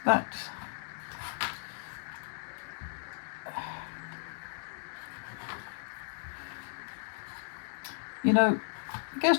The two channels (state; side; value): silent; right; digital silence